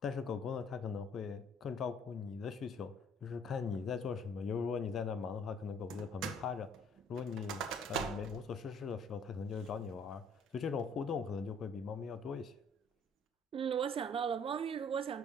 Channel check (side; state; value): both; normal; correlation 0.58